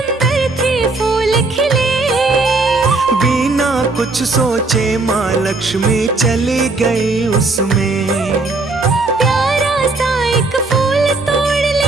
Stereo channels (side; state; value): left; quieter; 3.5 dB